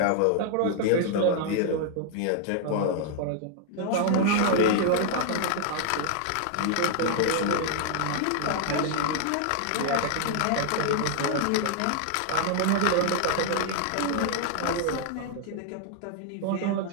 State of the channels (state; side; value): different; both; correlation 0.00